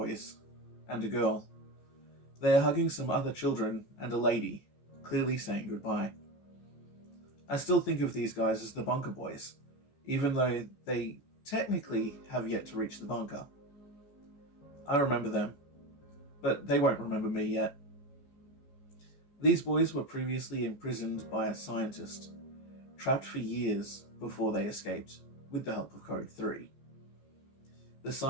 and a girl. They are hugging some other children and a lady, clearly saying goodbye. I still think of these guys as the bunker boys, even though they technically have yet to reach the bunker. I remember them, but they won't remember me yet. These boys were previously imprisoned by a scientist, trapped for years before they escaped, with the help of Code 3. The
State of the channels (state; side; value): late; right; 14 ms